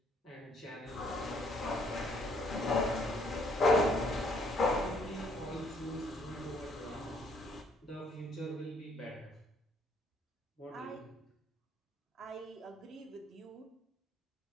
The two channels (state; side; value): normal; both; correlation 0.65